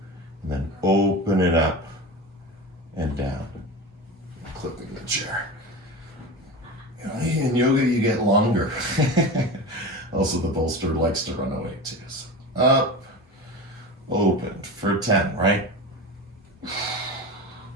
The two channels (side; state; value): both; normal; correlation 0.28